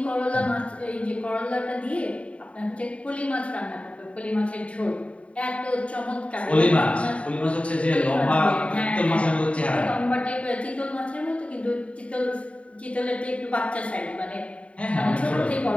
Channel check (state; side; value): late; right; 0.063 ms